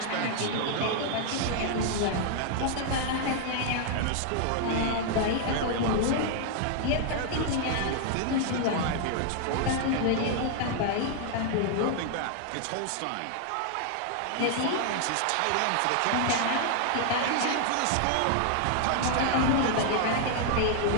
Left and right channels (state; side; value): different; both; correlation 0.00